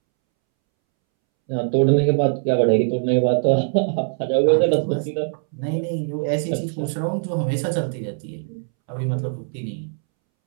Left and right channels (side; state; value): left; silent; 64 dB below the other